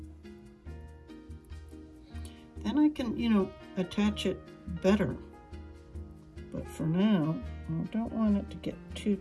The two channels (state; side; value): identical; both; correlation 1.00